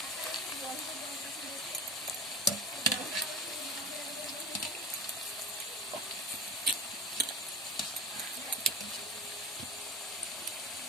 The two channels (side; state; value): both; normal; correlation 0.31